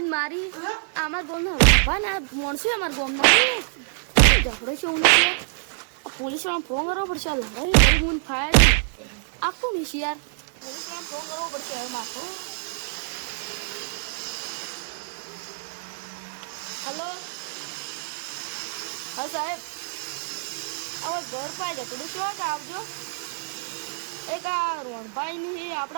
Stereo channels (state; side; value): silent; left; 55 dB below the other